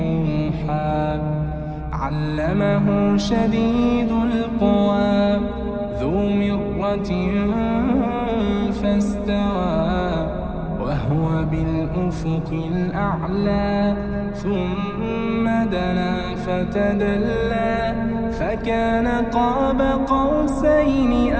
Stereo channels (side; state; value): both; identical; correlation 1.00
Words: علمه شديد القوى ذو مرة فاستوى وهو بالأفق الأعلى ثم دنا فتدلى فكان قاب قوسين